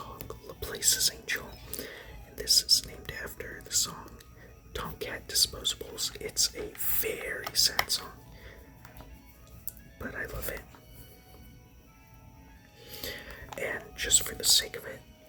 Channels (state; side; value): identical; both; correlation 1.00